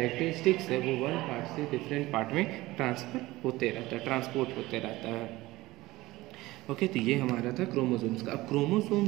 है वो वन पार्ट से डिफरेंट पार्ट में ट्रांसपोर्ट होते रहता है। ओके, तो ये हमारा था क्रोमोसोम्स का। अब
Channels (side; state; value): left; quieter; 18.7 dB